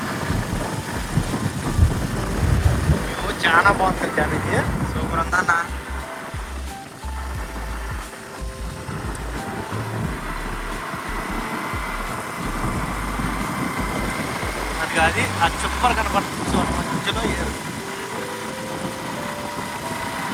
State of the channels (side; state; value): both; identical; correlation 1.00